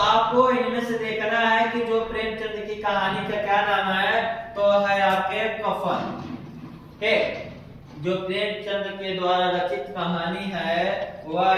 इनमें से देखना है कि जो प्रेमचंद की कहानी का क्या नाम है। तो है आपके कफन। ठीक, जो प्रेमचंद के द्वारा रचित कहानी है वह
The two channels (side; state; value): both; identical; correlation 1.00